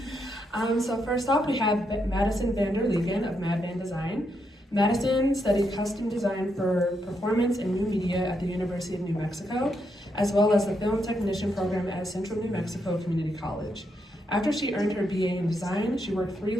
So first off, we have Madison Van Der Lingen of MadVan Design. Madison studied custom design for performance and new media at the University of New Mexico, as well as the film technician program at Central New Mexico Community College. After she earned her BA in design, she worked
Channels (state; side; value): normal; both; correlation 0.80